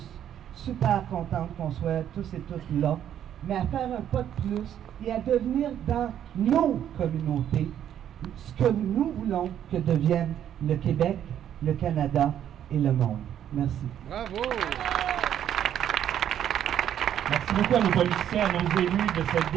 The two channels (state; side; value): quieter; left; 10.2 dB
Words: super contente qu'on soit tous et toutes là, mais à faire un pas de plus et à devenir dans nos communautés ce que nous voulons que devienne le Québec, le Canada et le monde. Merci. Bravo! Merci beaucoup à nos politiciens, à nos élus de s'être